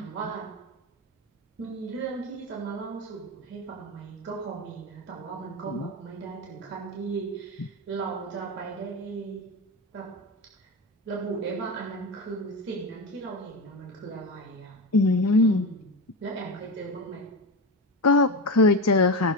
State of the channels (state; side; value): normal; both; correlation 0.19